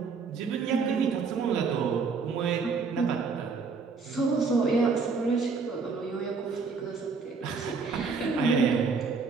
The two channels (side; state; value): left; quieter; 4.9 dB